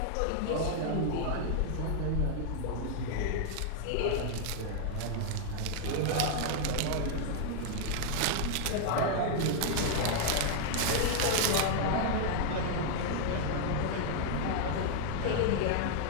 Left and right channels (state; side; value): different; both; correlation 0.00